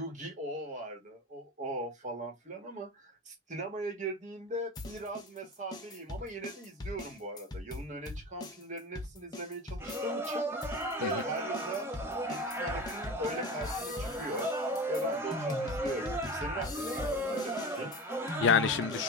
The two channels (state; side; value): normal; both; correlation 0.30